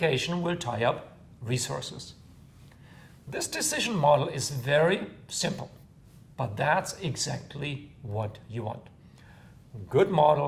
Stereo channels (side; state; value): both; identical; correlation 1.00